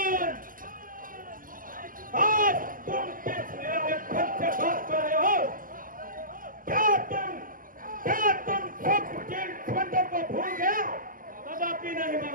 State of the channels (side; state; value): left; late; 0.41 ms